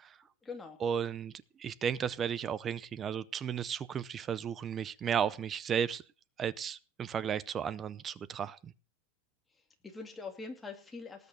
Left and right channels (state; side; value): quieter; left; 7.2 dB